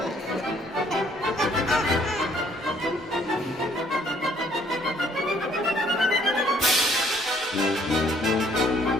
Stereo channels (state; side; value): normal; both; correlation 0.63